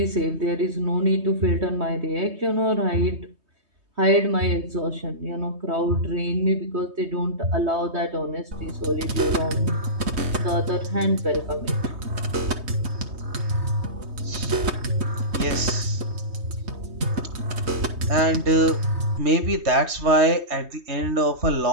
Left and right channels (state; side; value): late; left; 3.2 ms